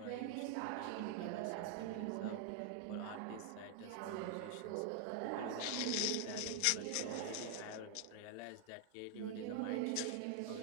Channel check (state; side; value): different; both; correlation 0.00